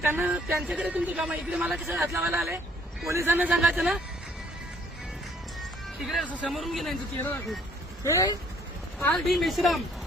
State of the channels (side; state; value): both; normal; correlation 0.61